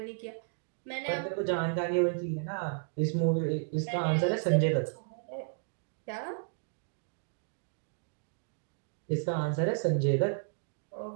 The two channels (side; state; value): left; silent; digital silence